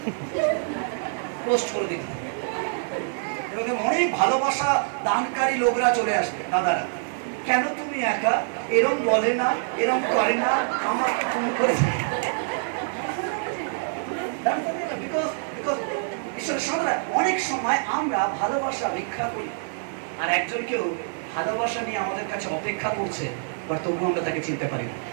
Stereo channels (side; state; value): left; silent; 61 dB below the other